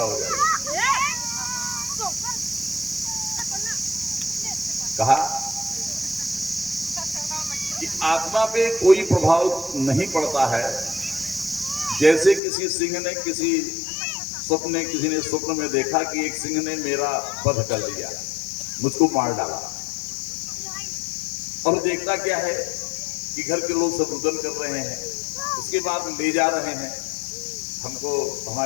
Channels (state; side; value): drops out; right; at 12.4 s